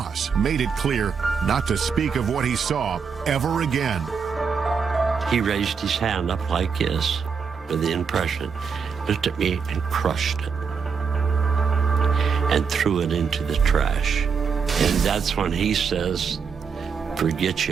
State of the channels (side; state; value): left; quieter; 6.0 dB